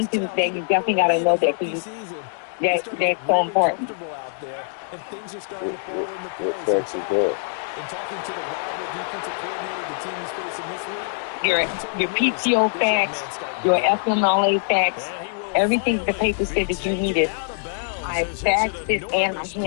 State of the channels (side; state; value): right; silent; digital silence